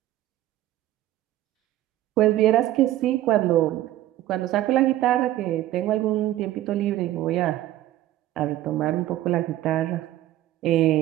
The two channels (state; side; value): quieter; left; 14.3 dB